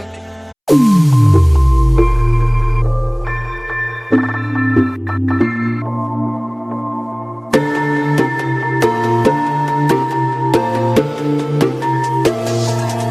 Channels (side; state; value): both; identical; correlation 1.00